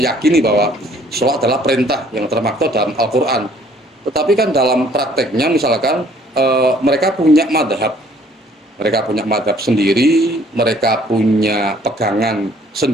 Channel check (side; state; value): both; normal; correlation 0.59